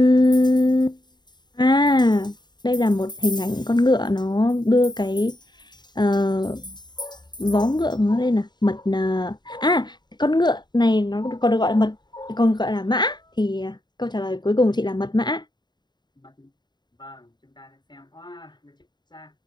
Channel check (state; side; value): late; right; 0.21 ms